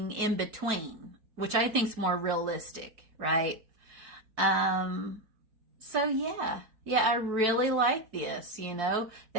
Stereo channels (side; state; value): left; late; 4.6 ms